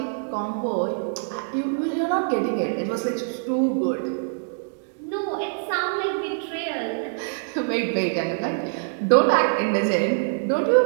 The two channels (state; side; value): silent; left; digital silence